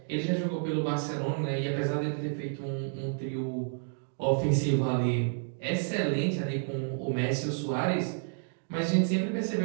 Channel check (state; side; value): silent; left; digital silence